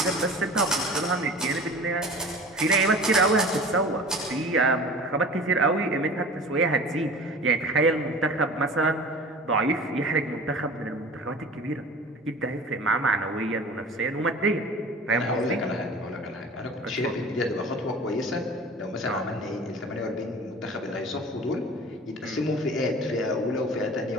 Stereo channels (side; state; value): both; normal; correlation 0.40